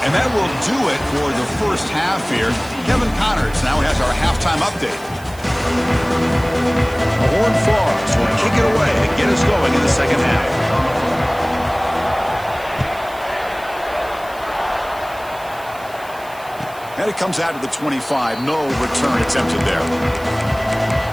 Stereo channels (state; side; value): noise; right; hiss, 21 dB below the sound